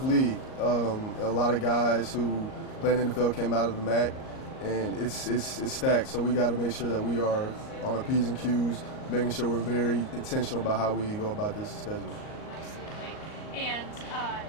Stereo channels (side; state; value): right; late; 38 ms